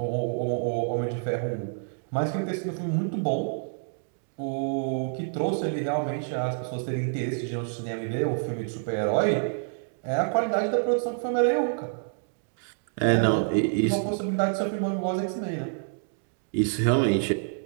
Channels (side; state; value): left; silent; digital silence